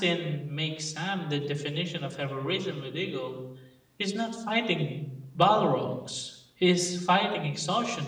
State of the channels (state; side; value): identical; both; correlation 1.00